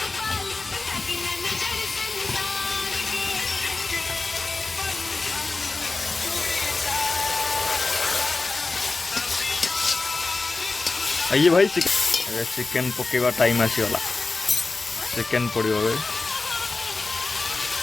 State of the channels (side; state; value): right; quieter; 3.6 dB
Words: आइए भाई चिकेन पकेवा टाइम आसीगला चिकेन पड़ो